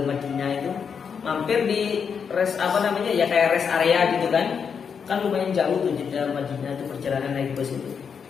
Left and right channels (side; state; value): right; quieter; 6.6 dB